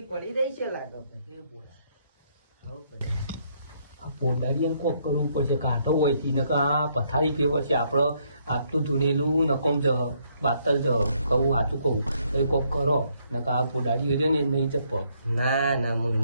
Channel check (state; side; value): inverted; both; correlation -0.71